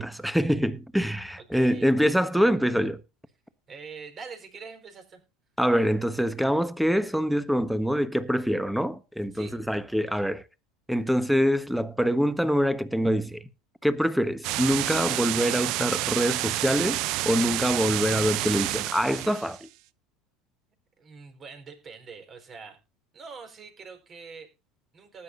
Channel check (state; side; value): normal; both; correlation 0.88